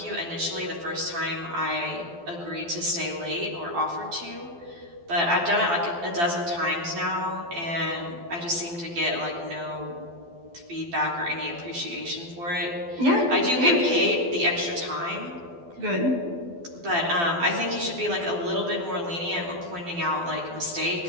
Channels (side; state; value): left; late; 12 ms